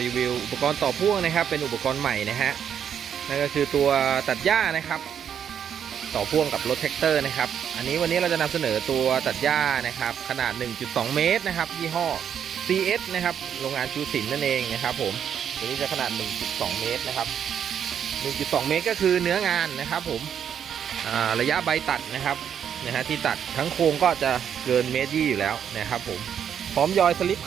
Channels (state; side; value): quieter; left; 8.5 dB